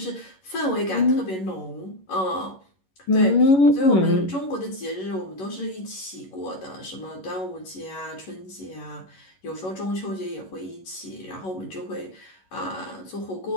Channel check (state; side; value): late; right; 11 ms